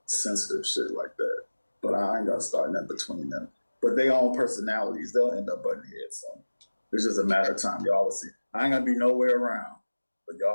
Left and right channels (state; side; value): inverted; both; correlation -1.00